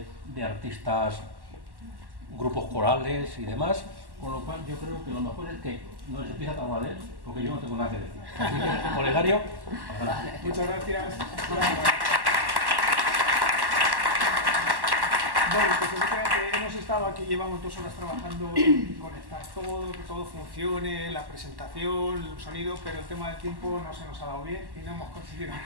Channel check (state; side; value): late; left; 1.1 ms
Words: artistas, grupos corales y demás, con lo cual yo creo que lo mejor es que no les empiece a hablar de él, porque yo no tengo nada que decir. Así que, Olegario, adelante. Muchas gracias. Bueno, pues efectivamente hemos estado aquí, llevamos 2 horas trabajando en conectar todo, que todo funcione, la presentación, el sonido, pero el tema del tiempo no se nos ha dado bien y no hemos conseguido